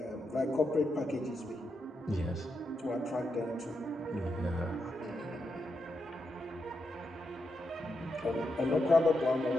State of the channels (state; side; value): normal; both; correlation 0.84